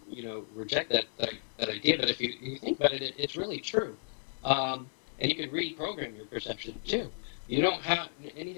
reject that idea, but if you think about it, it's really true. And you can reprogram your perception too. You don't have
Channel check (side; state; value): right; silent; 56 dB below the other